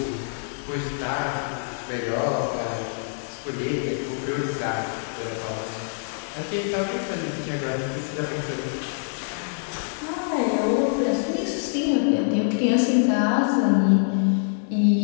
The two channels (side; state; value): right; silent; digital silence